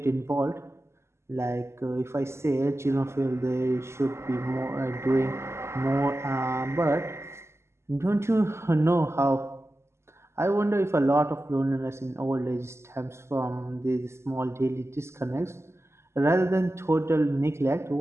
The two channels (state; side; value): late; left; 0.13 ms